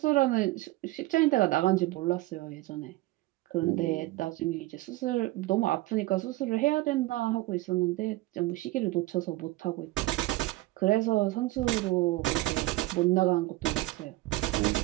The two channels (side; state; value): left; quieter; 18.8 dB